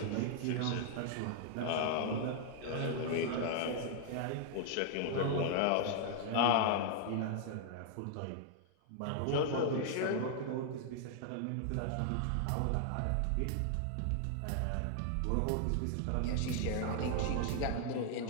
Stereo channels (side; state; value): both; different; correlation 0.00